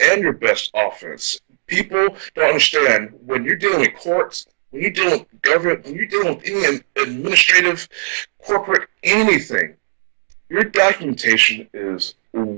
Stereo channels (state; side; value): silent; left; 61 dB below the other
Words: your best offense. People don't understand when you're dealing with courts, when you're dealing with government, when you're dealing with any administrative, corporate, anything, your documentation is